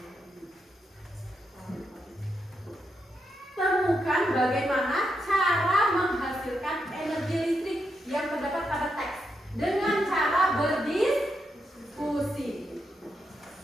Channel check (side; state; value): both; normal; correlation 0.83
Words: temukan bagaimana cara menghasilkan energi listrik yang terdapat pada teks dengan cara berdiskusi.